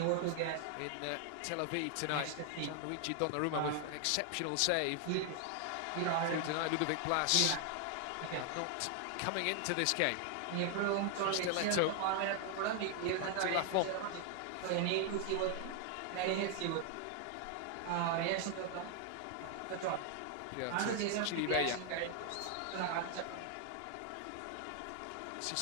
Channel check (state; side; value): different; both; correlation 0.00